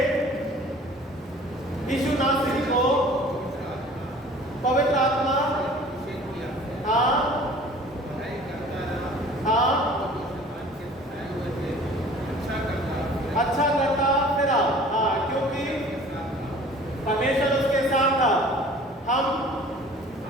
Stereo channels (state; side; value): normal; both; correlation 0.47